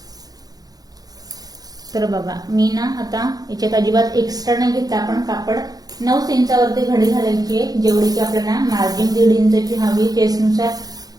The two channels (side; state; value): left; late; 0.19 ms